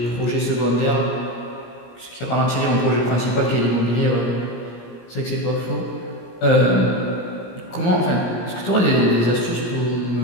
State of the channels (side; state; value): right; late; 17 ms